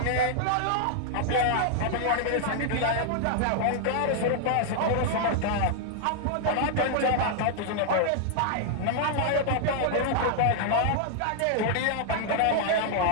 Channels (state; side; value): different; both; correlation -0.01